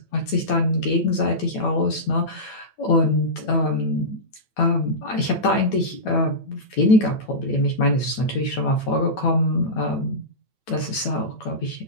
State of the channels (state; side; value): late; right; 9.0 ms